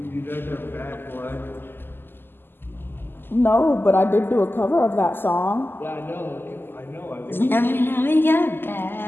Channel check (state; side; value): late; right; 0.099 ms